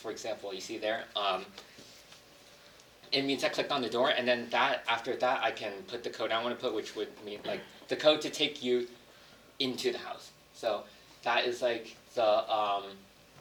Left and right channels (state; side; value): identical; both; correlation 1.00